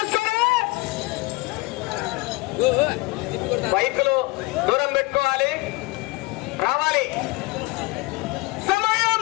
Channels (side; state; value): right; quieter; 23.1 dB